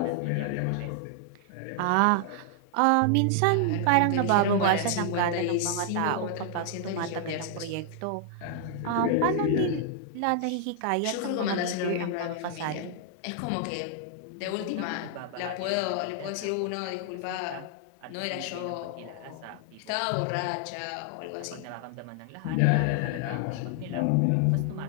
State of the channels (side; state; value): both; different; correlation 0.00